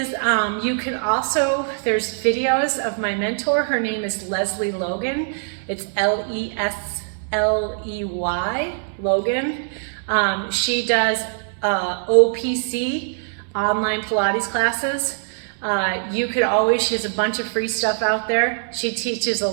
you can also, there's videos of my mentor. Her name is Leslie Logan. It's L-E-S-L-E-Y, Logan. She does OPC, online Pilates classes. You could always, she has a bunch of free stuff out there. She teaches a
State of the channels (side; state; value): left; silent; 64 dB below the other